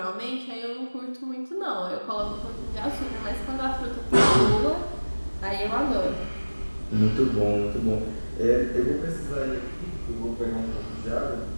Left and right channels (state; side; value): inverted; both; correlation -1.00